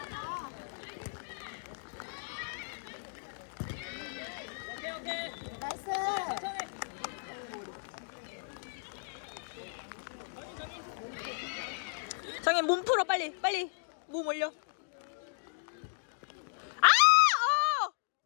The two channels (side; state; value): right; silent; digital silence